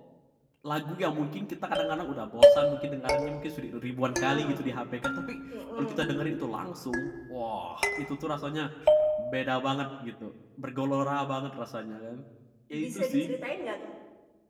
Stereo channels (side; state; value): both; identical; correlation 1.00